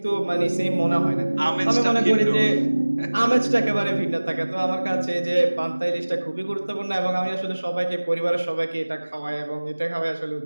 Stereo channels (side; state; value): both; inverted; correlation -1.00